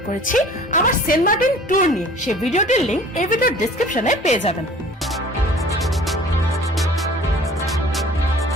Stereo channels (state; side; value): normal; both; correlation 0.48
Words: করেছি আমার সেন্ট মার্টিন ট্যুর নিয়ে। সেই ভিডিওটির লিংক এই ভিডিওর ডেসক্রিপশনে পেয়ে যাবেন।